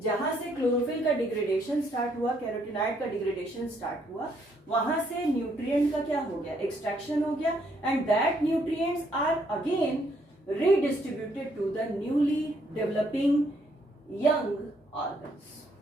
जहां से chlorophyll का degradation start हुआ, carotenoid का degradation start हुआ, वहां से nutrient का क्या हो गया? एक्सट्रैक्शन हो गया, and that nutrients are again redistributed to the newly developing young organs.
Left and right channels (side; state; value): both; normal; correlation 0.70